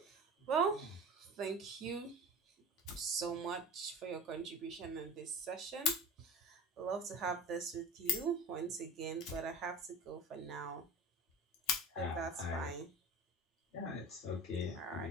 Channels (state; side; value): normal; both; correlation 0.34